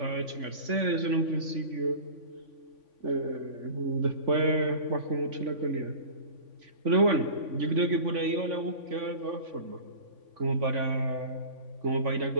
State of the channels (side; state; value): left; late; 3.5 ms